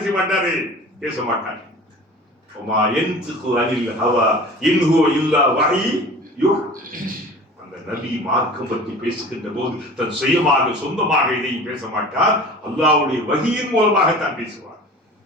செய்ய மாட்டாரு? பேச மாட்டாரு. அந்த நபி மார்க்கம் பற்றி பேசுகின்ற போது தன் சுயமாக சொந்தமாக இதையும் பேச மாட்டார், அல்லாஹ்வுடைய வஹியின் மூலமாகத்தான் பேசுவார்.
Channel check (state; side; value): normal; both; correlation 0.40